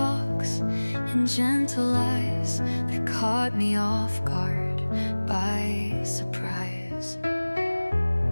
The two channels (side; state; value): both; inverted; correlation -1.00